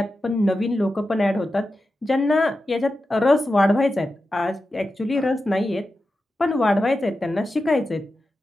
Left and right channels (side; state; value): both; normal; correlation 0.91